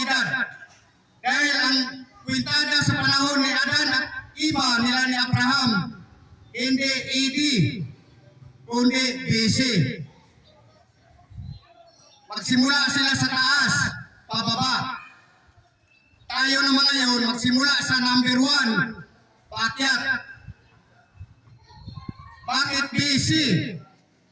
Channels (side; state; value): both; identical; correlation 1.00